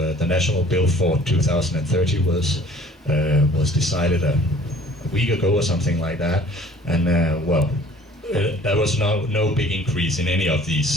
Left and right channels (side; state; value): both; normal; correlation 0.52